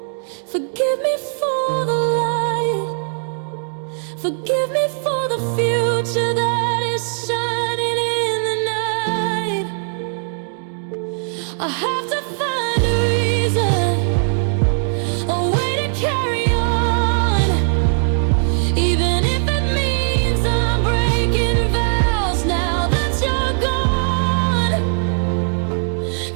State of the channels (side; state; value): left; silent; digital silence